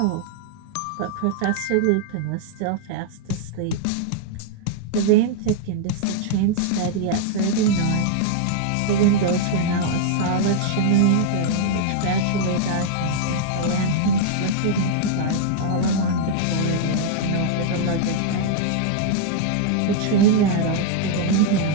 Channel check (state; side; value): different; both; correlation -0.01